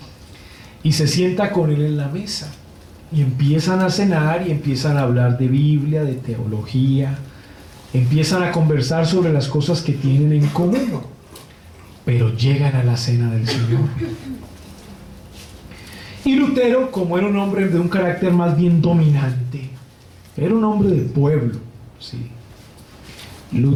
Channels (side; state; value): both; identical; correlation 1.00